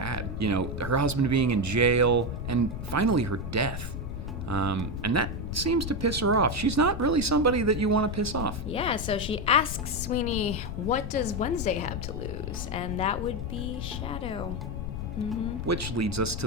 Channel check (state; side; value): noise; left; rumble, 5 dB below the sound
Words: Her husband being in jail, and finally her death. And that seems to piss her off. She's not really somebody that you want to piss off. Yeah, so she asks Sweeney, what does Wednesday have to lose? And that would be Shadow. Which leads us